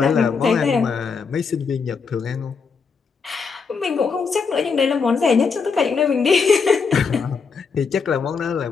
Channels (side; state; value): right; quieter; 5.3 dB